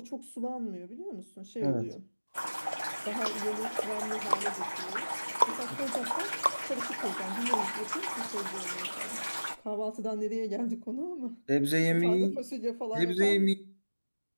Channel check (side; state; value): both; inverted; correlation -1.00